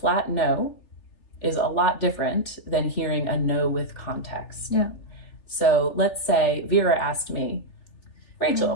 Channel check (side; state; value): right; late; 3.4 ms